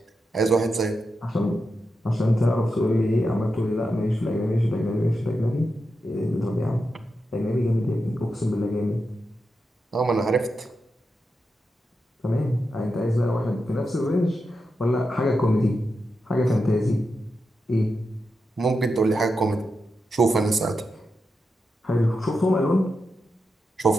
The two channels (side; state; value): both; normal; correlation 0.88